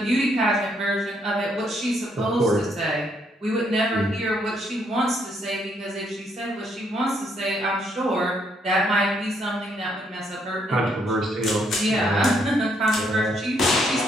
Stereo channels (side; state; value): both; normal; correlation 0.72